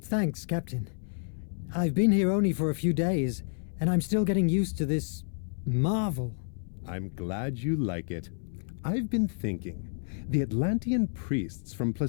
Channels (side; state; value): right; silent; 58 dB below the other